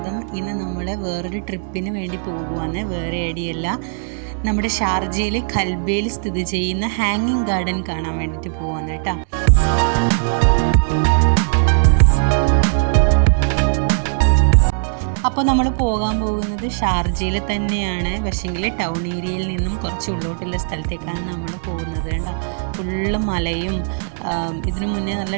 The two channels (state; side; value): silent; left; 67 dB below the other